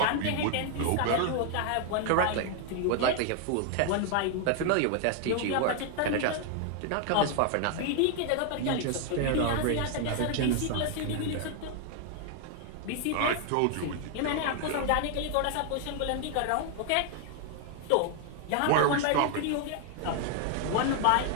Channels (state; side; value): different; both; correlation 0.00